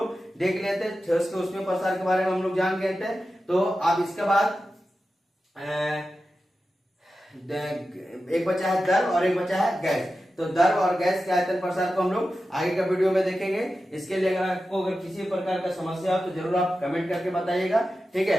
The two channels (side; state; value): both; normal; correlation 0.92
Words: देख लेते, ठोस के उसमें प्रसार के बारे में हम लोग जान गए थे। तो अब इसके बाद एक बचा है द्रव और एक बचा है गैस। तो द्रव और गैस के आयतन प्रसार को हम लोग आगे का वीडियो में देखेंगे। इसके लिए अगर आपको अगर किसी प्रकार का समस्या हो तो जरूर आप कमेंट करके बताइएगा, ठीक